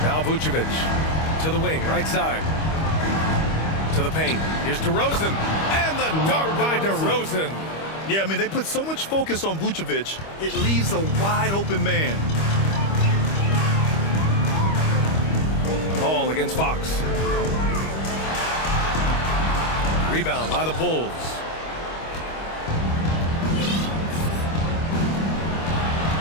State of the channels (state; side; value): late; right; 25 ms